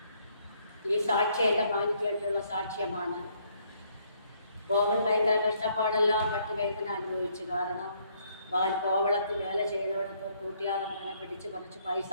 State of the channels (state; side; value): inverted; both; correlation -0.68